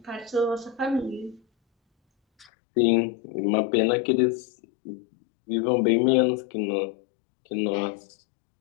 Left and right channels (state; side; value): drops out; right; at 2.5 s